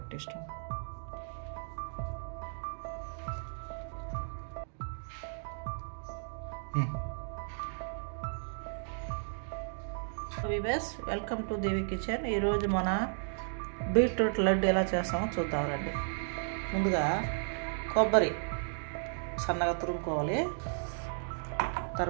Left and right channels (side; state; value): left; silent; digital silence